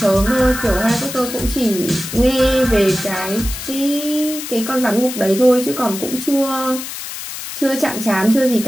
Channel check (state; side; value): noise; left; hiss, 9 dB below the sound